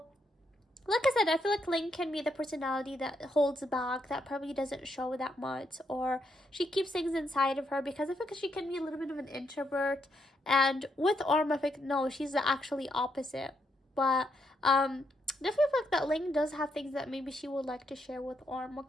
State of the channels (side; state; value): both; normal; correlation 0.78